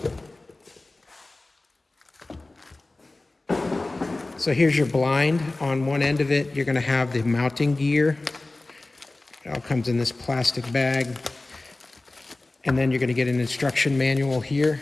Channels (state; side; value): quieter; right; 3.0 dB